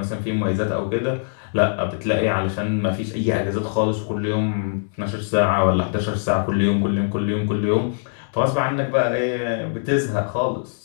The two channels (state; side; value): silent; right; digital silence